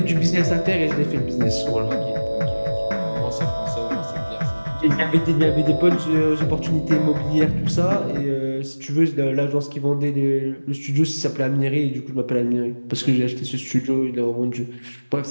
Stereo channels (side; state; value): both; inverted; correlation -1.00